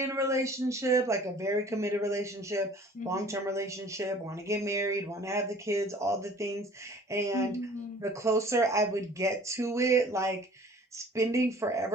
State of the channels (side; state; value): both; normal; correlation 0.50